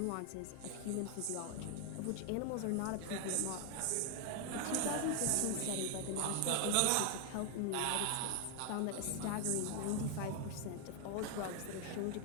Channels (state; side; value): different; both; correlation 0.01